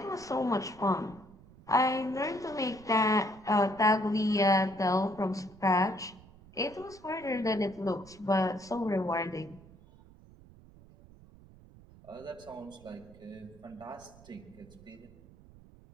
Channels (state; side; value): noise; right; rumble, 22 dB below the sound